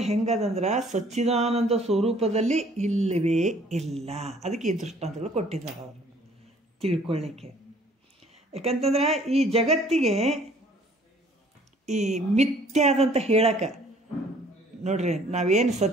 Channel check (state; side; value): normal; both; correlation 0.57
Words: ಹೆಂಗದಂದ್ರೆ ಸಚ್ಚಿದಾನಂದ ಸ್ವರೂಪದಲ್ಲಿ ಇಲ್ಲವೇ ಇಲ್ಲ. ಅದಕ್ಕೆ ಈ ದೃಷ್ಟಾಂತಗಳು ಕೊಟ್ಟಿದ್ದಾರೆ ಅವರು ತಿಳ್ಕೊಳ್ಳಿಕ್ಕೆ. ಯಾಕಂತಂದ್ರೆ ಈ ಜಗತ್ತಿಗೆ ಈ ಮಿಥ್ಯಾದಂತ ಹೇಳಕ್ಕೆ ನೋಡ್ರಿ, ನಾವೇನು